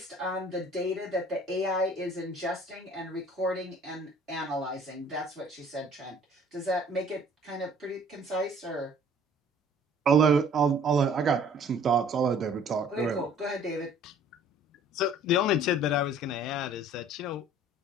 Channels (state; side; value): normal; both; correlation 0.53